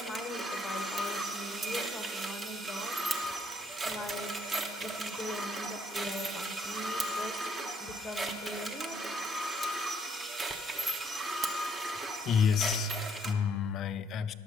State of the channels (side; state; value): both; normal; correlation 0.69